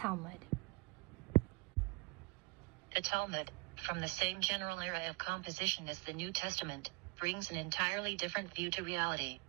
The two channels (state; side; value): quieter; left; 27.4 dB